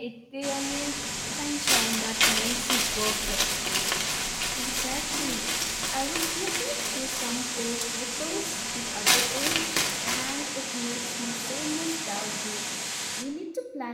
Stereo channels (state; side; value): identical; both; correlation 1.00